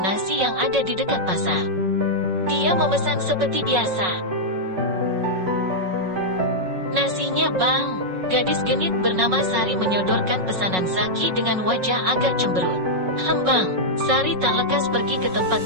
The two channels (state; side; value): late; left; 5.4 ms